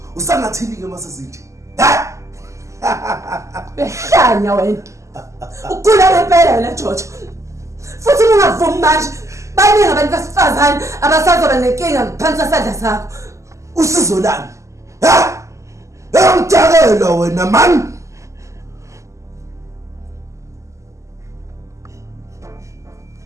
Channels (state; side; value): late; left; 0.15 ms